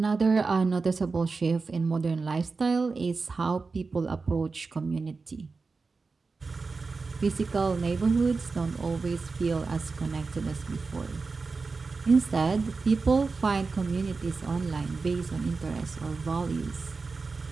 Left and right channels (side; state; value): left; quieter; 4.3 dB